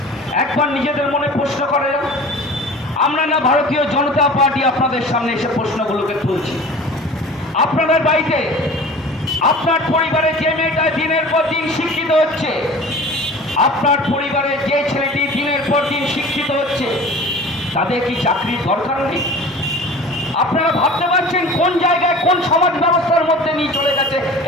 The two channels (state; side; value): normal; both; correlation 0.40